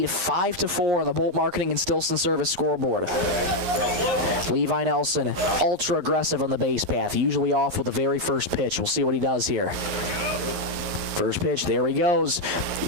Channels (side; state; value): left; late; 11 ms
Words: 5-4 on the Bolt Marketing and Stilson Service scoreboard. Levi Nelson, ultra aggressive on the base path, usually off with the very first pitch. We'll see what he does here. First pitch, there he goes.